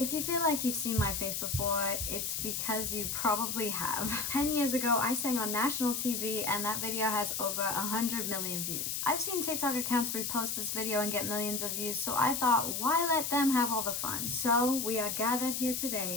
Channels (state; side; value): noise; left; hiss, 2 dB below the sound